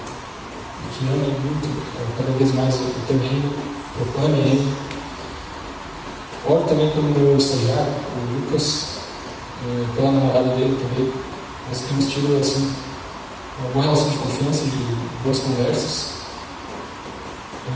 que amem muito, cada vez mais o teu reino, proclamem ele. Oro também pelo meu estagiário, o Lucas, pela namorada dele também. Nós temos tido assim, uma boa relação de confiança, de boas conversas.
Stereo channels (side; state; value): both; identical; correlation 1.00